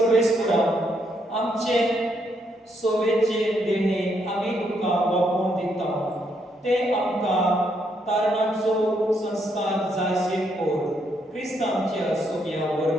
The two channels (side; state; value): both; normal; correlation 0.75